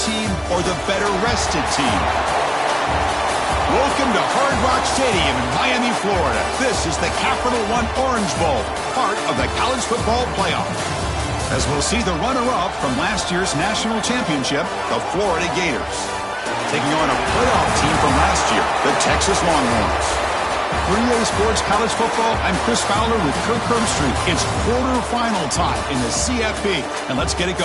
or the better-rested team? Welcome to Hard Rock Stadium in Miami, Florida. This is the Capital One Orange Bowl, part of the college football playoff, as we'll see the runner-up from last year's national championship, the Florida Gators, taking on a playoff team from last year, the Texas Longhorns. For EA Sports College Football, I'm Chris Fowler with Kirk Herbstreit. It's quarterfinal time in the CFP, and let's get it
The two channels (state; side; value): identical; both; correlation 1.00